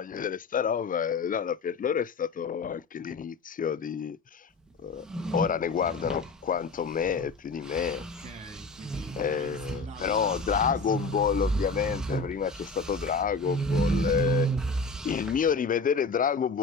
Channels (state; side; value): quieter; right; 4.2 dB